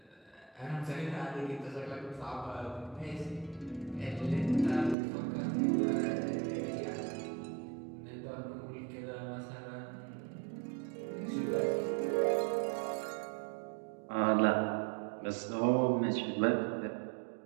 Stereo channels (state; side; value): drops out; left; at 5.0 s